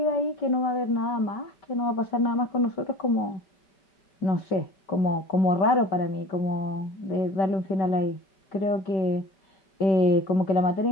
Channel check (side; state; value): right; late; 5.2 ms